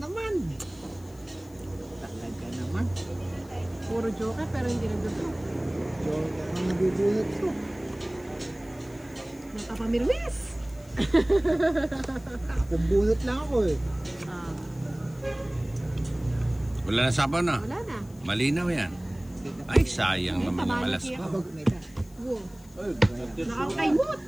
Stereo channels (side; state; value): left; noise; hiss, 26 dB below the sound